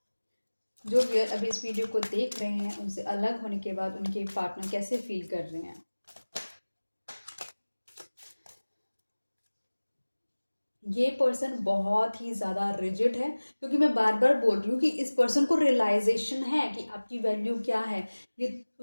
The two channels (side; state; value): both; inverted; correlation -1.00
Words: जो व्यूअर अभी इस वीडियो को देख रहे हैं उनसे अलग होने के बाद उनके पार्टनर कैसे फील कर रहे हैं। ये पर्सन बहुत ही ज़्यादा रिजिड है, क्योंकि मैं बार बार बोल रही हूँ कि इस पर्सन को रियलाइजेशन है कि आपकी वैल्यू क्या है। ये